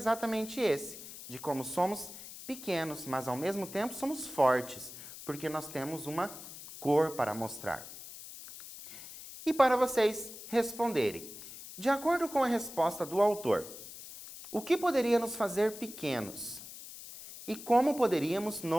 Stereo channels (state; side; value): noise; left; hiss, 13 dB below the sound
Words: esse, de como somos pequenos, mas ao mesmo tempo somos fortes, porque nós temos uma cor para mostrar. E para vocês responderem, de acordo com a resposta do autor, o que poderia nos fazer pequenos? E como poderíamos